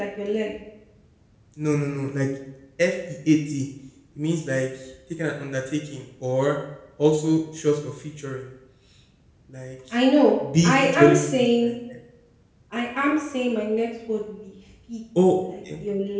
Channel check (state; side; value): identical; both; correlation 1.00